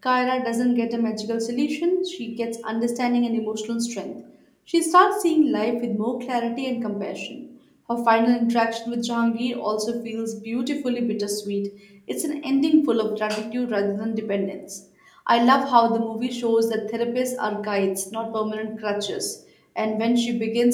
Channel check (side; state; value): both; identical; correlation 1.00